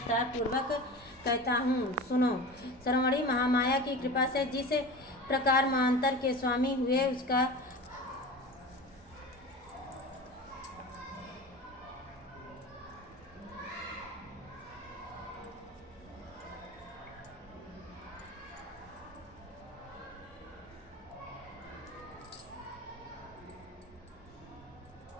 पूर्वक कहता हूँ, सुनो। श्रवणी महामाया की कृपा से जिस प्रकार महांतर के स्वामी हुए उसका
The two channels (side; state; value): both; normal; correlation 0.33